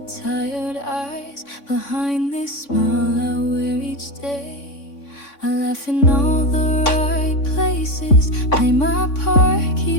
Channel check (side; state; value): right; late; 3.5 ms